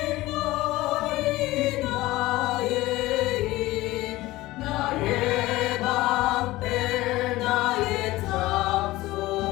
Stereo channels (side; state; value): right; quieter; 18.3 dB